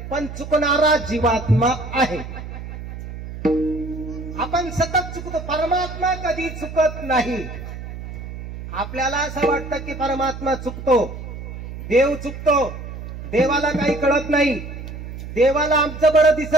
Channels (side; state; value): right; noise; hum, 10 dB below the sound